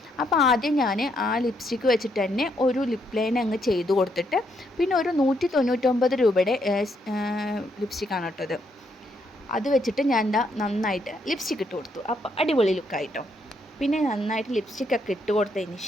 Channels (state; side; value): normal; both; correlation 0.75